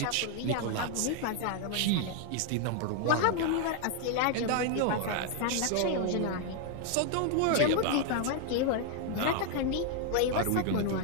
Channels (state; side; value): different; both; correlation 0.00